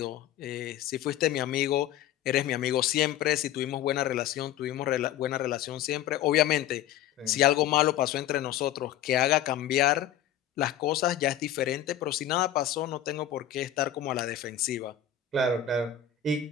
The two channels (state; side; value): quieter; right; 10.5 dB